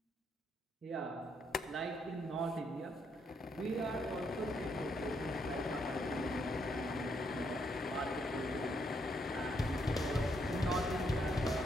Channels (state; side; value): normal; both; correlation 0.75